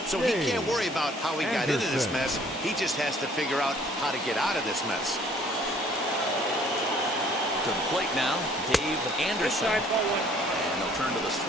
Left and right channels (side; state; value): both; normal; correlation 0.58